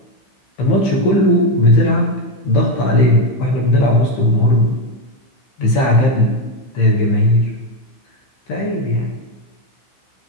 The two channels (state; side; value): late; right; 15 ms